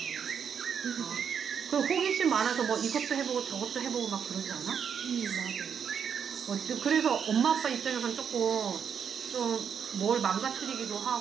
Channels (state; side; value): quieter; left; 7.4 dB